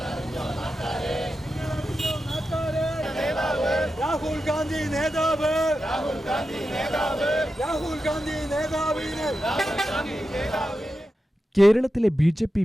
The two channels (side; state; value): both; normal; correlation 0.90